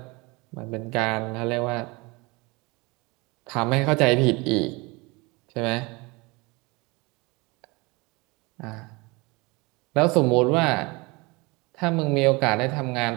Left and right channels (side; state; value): left; quieter; 25.7 dB